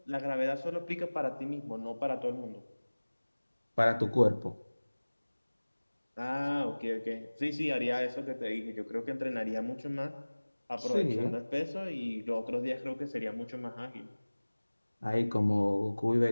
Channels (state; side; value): inverted; both; correlation -1.00